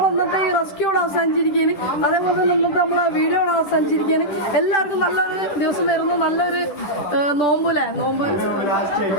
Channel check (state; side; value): late; right; 10 ms